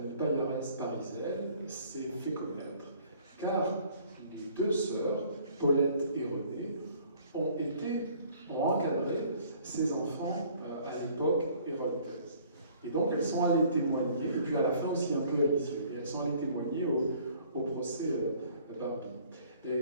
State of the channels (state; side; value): inverted; both; correlation -0.56